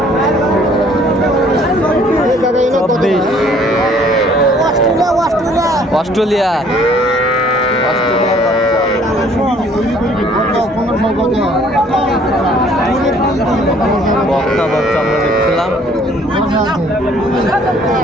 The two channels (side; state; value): both; normal; correlation 0.58